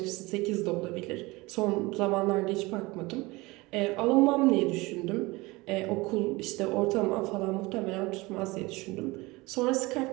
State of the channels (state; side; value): quieter; left; 22.7 dB